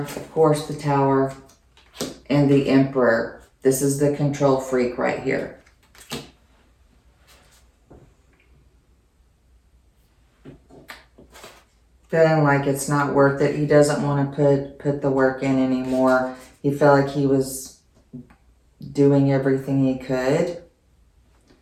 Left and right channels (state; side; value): identical; both; correlation 1.00